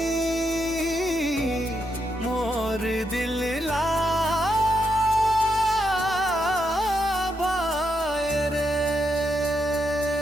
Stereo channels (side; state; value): both; normal; correlation 0.81